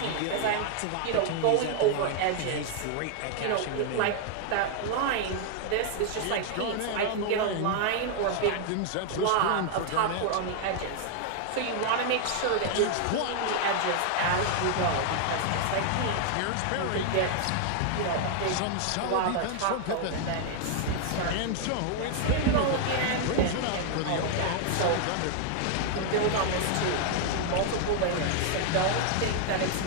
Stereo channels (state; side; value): different; both; correlation 0.00